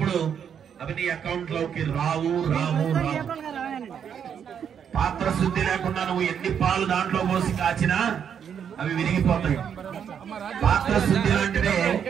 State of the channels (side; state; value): left; quieter; 8.0 dB